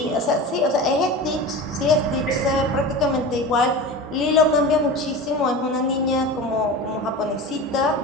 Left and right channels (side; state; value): both; normal; correlation 0.30